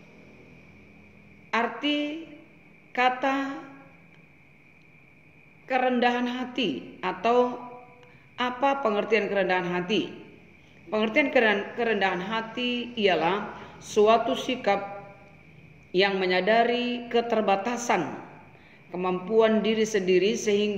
Arti kata kerendahan hati, atau apa pengertian kerendahan hati? Pengertian kerendahan hati ialah suatu sikap yang menyadari keterbatasan kemampuan diri sendiri,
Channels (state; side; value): identical; both; correlation 1.00